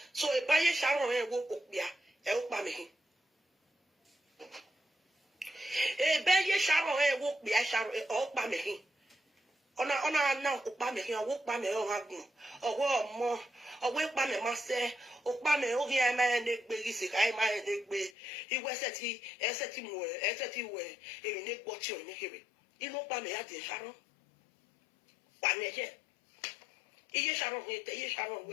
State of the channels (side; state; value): right; drops out; at 18.1 s